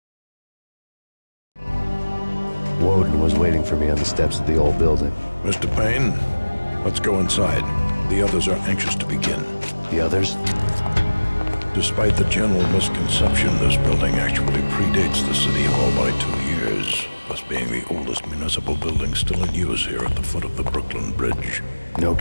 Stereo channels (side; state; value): both; inverted; correlation -1.00